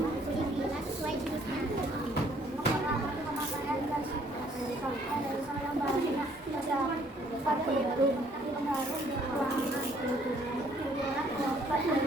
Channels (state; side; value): normal; both; correlation 0.62